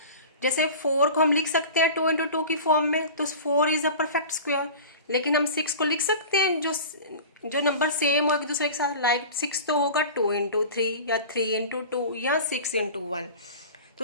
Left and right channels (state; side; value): inverted; both; correlation -0.36